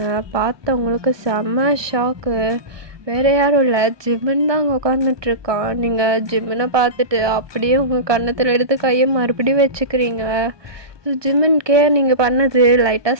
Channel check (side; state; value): left; late; 1.2 ms